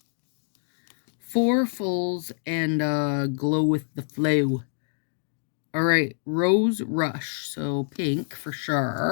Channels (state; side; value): silent; right; digital silence